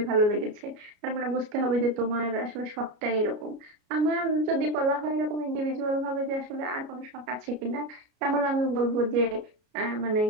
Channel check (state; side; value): late; left; 33 ms